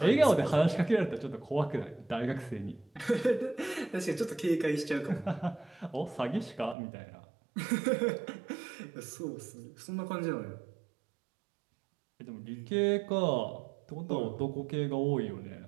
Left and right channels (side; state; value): left; drops out; at 6.8 s